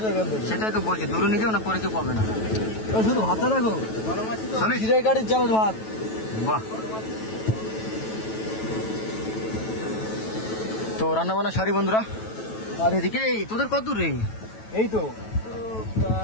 এখান থেকে। সেটাই তো বলছি, দূরে নিয়ে যাও, না পরে কেউ পাবে না। শুধু ভাতটা রাখো, জিরে গাড়ির চালের ভাত। বাহ, তো রান্না বান্না সারি বন্ধুরা। আর এদিকে তোদের কত দূর রে? এই তো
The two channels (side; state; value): right; late; 9.2 ms